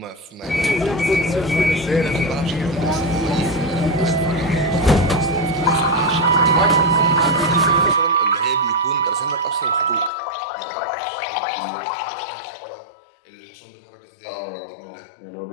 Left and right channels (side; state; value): right; drops out; at 10.1 s